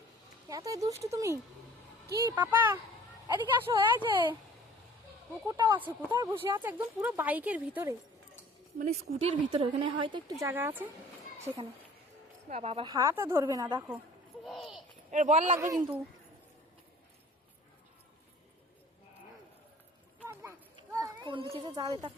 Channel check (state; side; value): normal; both; correlation 0.49